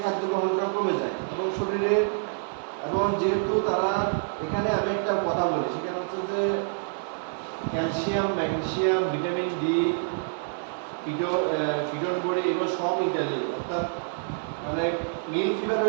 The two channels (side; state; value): left; silent; digital silence